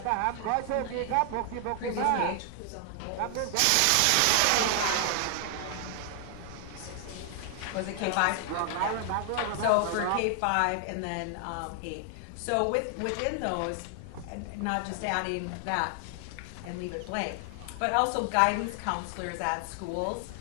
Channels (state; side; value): different; both; correlation 0.00